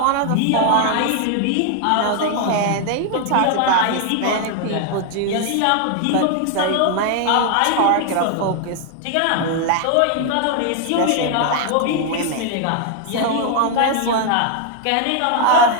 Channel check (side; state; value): both; different; correlation 0.00